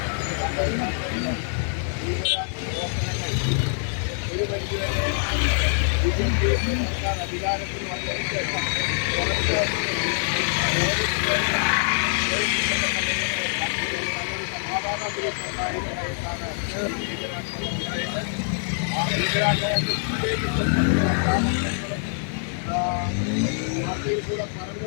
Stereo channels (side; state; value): right; silent; 59 dB below the other